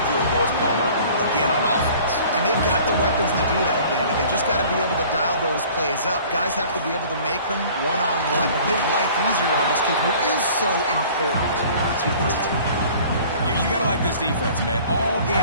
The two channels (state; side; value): inverted; both; correlation -0.49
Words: field goals, Palmer, again on offense. And they've got the weapons to do that, David. They just got to be able to dial those plays up. Guys have to be able to make them one-on-one and make life easier on this kid, who is so important to this team. You got to like this defense, man. All